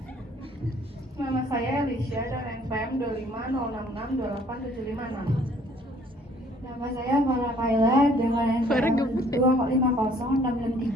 Nama saya Alicia dan NPM 2506628756. Nama saya Farah Kaila dengan NPM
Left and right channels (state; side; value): normal; both; correlation 0.60